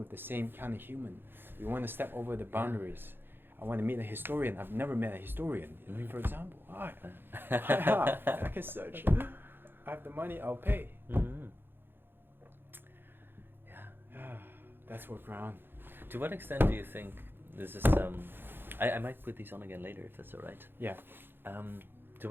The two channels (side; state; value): left; late; 0.10 ms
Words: the same kind of human. We want to step over the boundaries. I want to meet a historian. I've never met a historian. Like, for example, I can search. I have the money, I'll pay. Yeah, that's Workaround. To what extent do you think this is? I might put these on again later if that's all right. Yeah. To